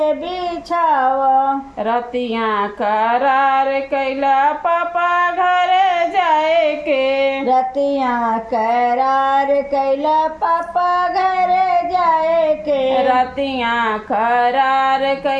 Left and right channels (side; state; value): both; identical; correlation 1.00